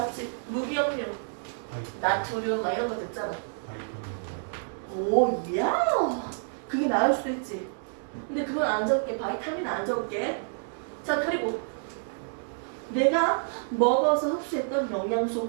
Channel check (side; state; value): left; silent; 59 dB below the other